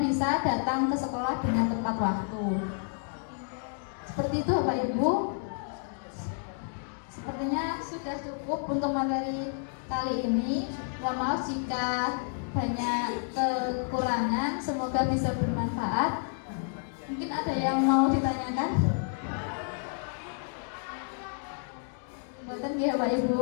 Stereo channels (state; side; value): silent; right; 58 dB below the other